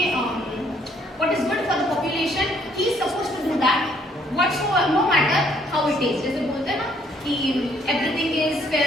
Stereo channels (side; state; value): both; normal; correlation 0.66